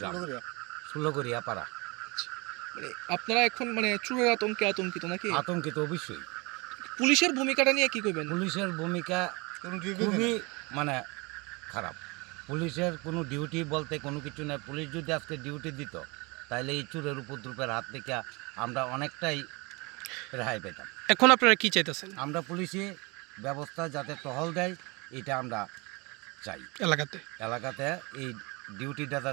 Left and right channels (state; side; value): quieter; left; 27.0 dB